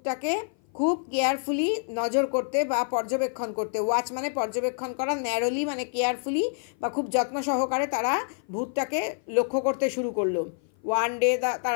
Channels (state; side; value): silent; right; 56 dB below the other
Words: খুব কেয়ারফুলি নজর করতে বা পর্যবেক্ষণ করতে। ওয়াচ মানে পর্যবেক্ষণ করা, ন্যারোলি মানে কেয়ারফুলি বা খুব যত্ন সহকারে তারা ভূতটাকে লক্ষ্য করতে শুরু করলো। ওয়ান ডে,